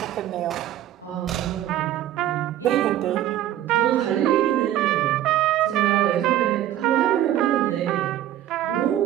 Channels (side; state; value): left; quieter; 12.5 dB